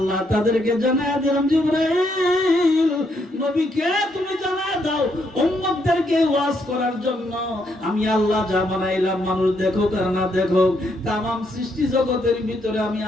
তাদেরকে জানায়া দিলাম, জিবরাইল নবীকে তুমি জানায়া দাও উম্মতদেরকে ওয়াজ করার জন্য আমি আল্লাহ যা বানাইলাম, মানুষ দেখুক আর না দেখুক, तमाम সৃষ্টি জগতের ভিতরে আমি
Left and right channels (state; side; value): normal; both; correlation 0.75